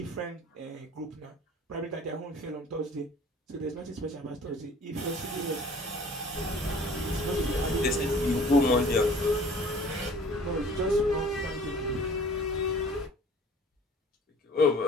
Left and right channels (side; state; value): both; normal; correlation 0.50